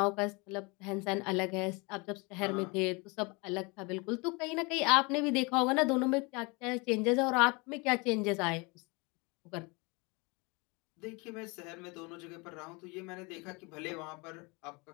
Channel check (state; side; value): quieter; right; 28.2 dB